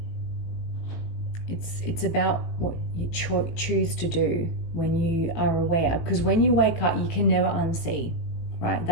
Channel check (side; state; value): right; late; 18 ms